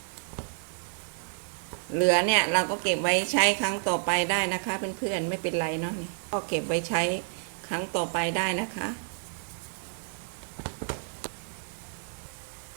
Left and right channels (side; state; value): left; silent; 58 dB below the other